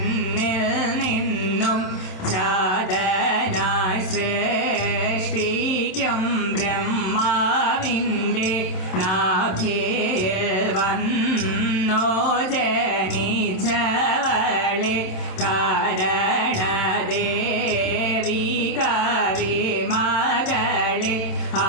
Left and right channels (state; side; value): late; right; 27 ms